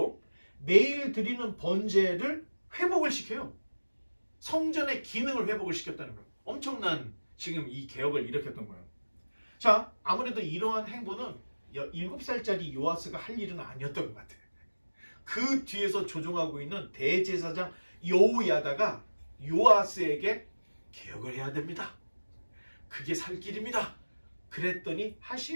매일 드리는 번제를 회복을 시켜요. 성전의 기능을 회복을 시켰다는 거예요. 엄청난 지금 이 개혁을 일으켰던 거예요. 자, 아무래도 이러한 행보는 7살짜리 요아스가 할 일은 아니었던 것 같아요. 그 뒤에서 조종하고 있는 대제사장 여호야다가 요아스에게 개혁을 해야 됩니다. 그게 살 길입니다. 그랬더니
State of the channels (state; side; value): inverted; both; correlation -1.00